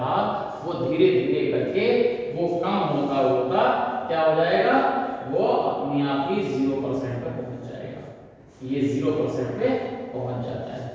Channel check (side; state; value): both; identical; correlation 1.00